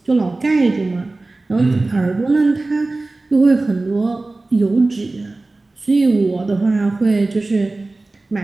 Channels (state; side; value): quieter; left; 3.2 dB